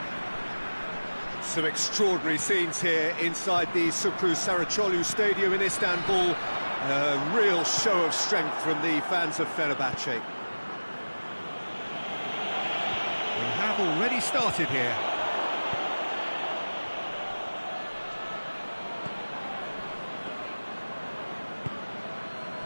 Some extraordinary scenes here inside the Sukru Saracoğlu Stadium in Istanbul. A real show of strength from the fans of Fenerbahçe. We have already started here.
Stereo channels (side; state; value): both; inverted; correlation -1.00